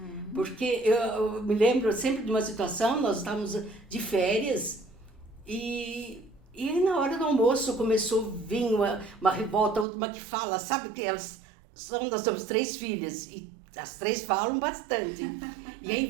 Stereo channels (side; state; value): left; drops out; at 9.9 s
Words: Porque eu me lembro sempre de uma situação, nós estávamos de férias e na hora do almoço começou a vir uma revolta, uma que fala, sabe que nós temos 3 filhas e as 3 falam bastante. E aí